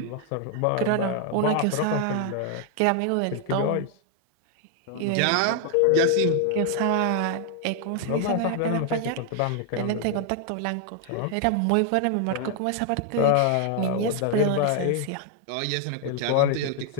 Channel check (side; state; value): both; different; correlation 0.00